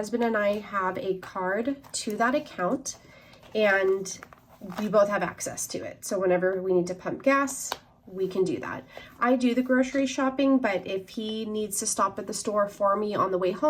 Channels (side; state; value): both; identical; correlation 1.00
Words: and I have a card to that account, and we both have access to it. So whenever we need to pump gas, we can do that. I do the grocery shopping, but if he needs to stop at the store for me on the way